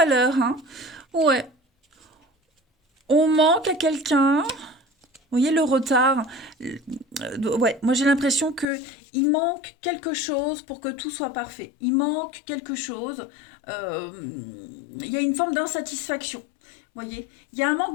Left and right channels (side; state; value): right; drops out; at 8.7 s